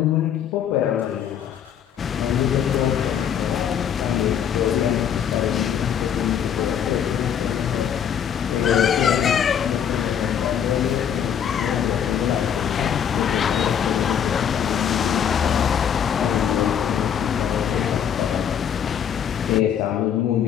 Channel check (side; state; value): right; quieter; 8.6 dB